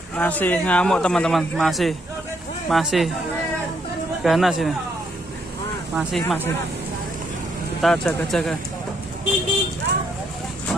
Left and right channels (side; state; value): both; normal; correlation 0.73